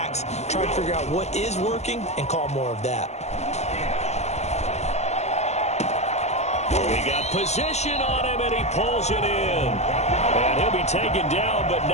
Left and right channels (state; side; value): late; right; 0.32 ms